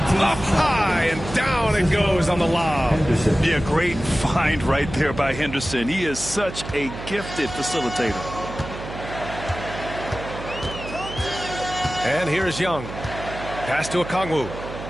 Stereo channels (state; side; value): noise; right; hum, 10 dB below the sound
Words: Up high and down it goes on the lob. Yeah, great find right there by Henderson. He is such a gifted facilitator. And here's Young. Pass to Okongwu.